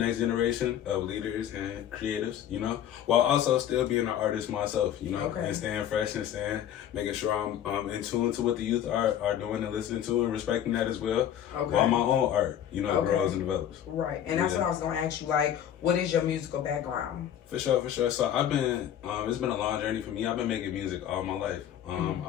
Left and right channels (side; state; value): right; quieter; 10.3 dB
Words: generation of leaders and creatives, while also still being an artist myself, and staying fresh and making sure I'm in tune to what the youth are doing and listening to and respecting that as well, while my own art, grows and develops. Right, and that's what I was going to ask you, like, what is your musical background? For sure. So I've been, it's been a long journey for me. I've been making music all my life.